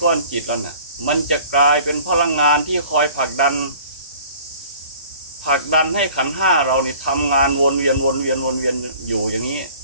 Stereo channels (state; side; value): inverted; both; correlation -0.49